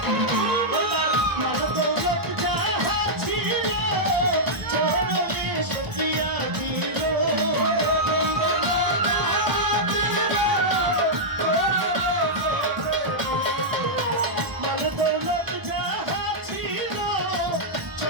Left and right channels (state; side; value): late; left; 1.3 ms